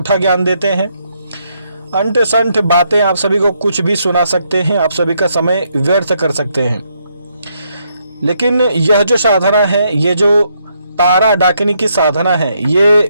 ज्ञान देते हैं। अंठ संठ बातें आप सभी को कुछ भी सुना सकते हैं, आप सभी का समय व्यर्थ कर सकते हैं। लेकिन यह जो साधना है, ये जो तारा डाकिनी की साधना है, ये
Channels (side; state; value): both; inverted; correlation -0.76